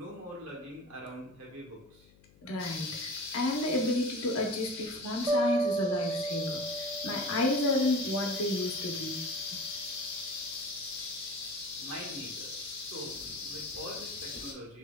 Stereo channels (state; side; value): noise; left; hum, 27 dB below the sound